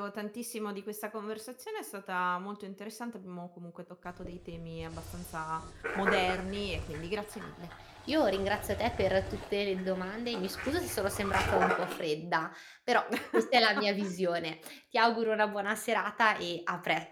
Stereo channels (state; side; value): identical; both; correlation 1.00